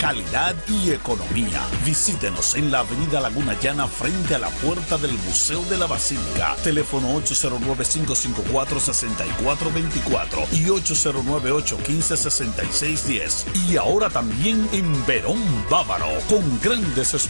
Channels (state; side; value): inverted; both; correlation -1.00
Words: y economía. Visítenos en la avenida Laguna Llana frente a la puerta del Museo de la Basílica. Teléfono 809-554-6424 y 809-815-6610. Y ahora también en Verón Bávaro, con grandes